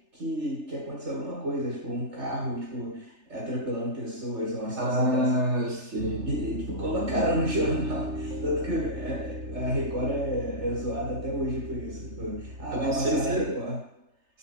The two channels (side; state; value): left; late; 3.3 ms